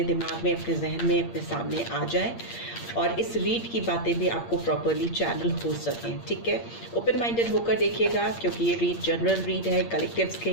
दिमाग में, अपने जहन में, अपने सामने आ जाए और इस रीड की बातें भी आपको प्रॉपरली चैनल हो सकें, ठीक है? ओपन माइंडेड होकर देखिएगा, क्योंकि ये रीड जनरल रीड है, कलेक्टिव्स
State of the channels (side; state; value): right; late; 8.6 ms